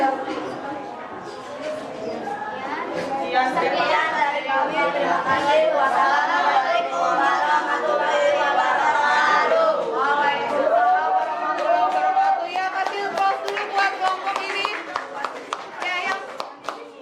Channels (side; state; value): both; identical; correlation 1.00